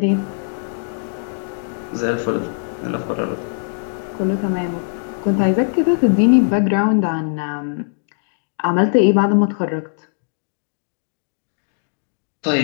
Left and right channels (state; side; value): silent; right; digital silence